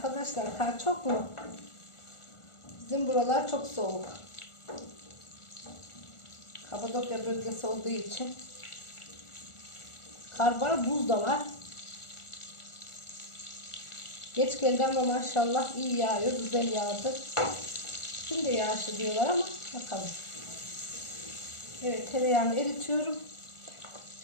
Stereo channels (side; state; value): right; late; 1.4 ms